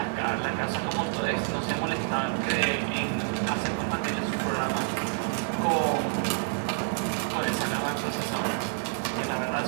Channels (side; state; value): left; silent; digital silence